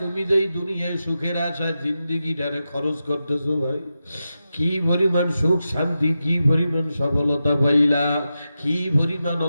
যেই দুনিয়ায় সুখের আশায় জিন্দিগিটারে খরচ করতেছো ভাই, কি পরিমাণ সুখ শান্তি, কি পরিমাণ সফলতা পাইলা, কি পরিমাণ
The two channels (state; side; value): inverted; both; correlation -0.90